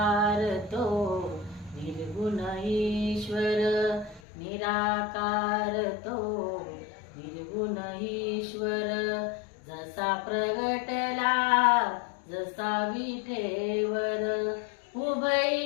तो निर्गुण ईश्वर, निराकार तो निर्गुण ईश्वर, जसा प्रगटला जसा विठेवर,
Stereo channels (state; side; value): drops out; right; at 4.2 s